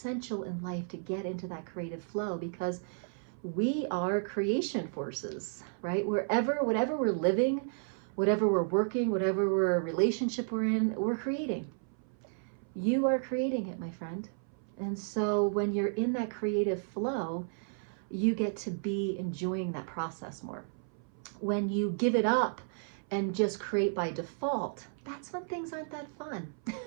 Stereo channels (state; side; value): silent; left; 56 dB below the other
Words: in life to get into that creative flow, because we are creation forces, right? Whatever we're living, whatever we're working, whatever relationship we're in, we're creating. You are creating it, my friend. And so when you're in that creative flow, you get to be enjoying that process more. When you give it up and just create by default, that's when things aren't that fun.